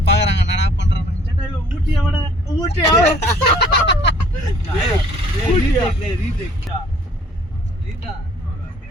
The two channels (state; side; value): normal; both; correlation 0.58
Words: பாக்குறாங்க என்னடா பண்றாங்க ஊட்டி அவட ஊட்டி